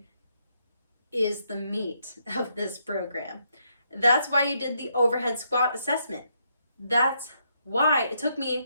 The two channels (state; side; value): inverted; both; correlation -0.76